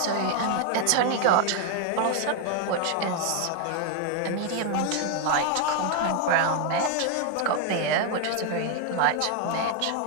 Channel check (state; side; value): different; both; correlation 0.01